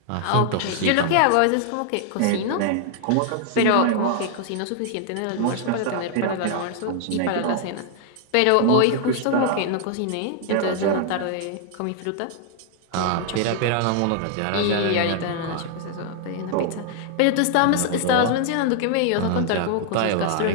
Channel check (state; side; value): different; both; correlation 0.00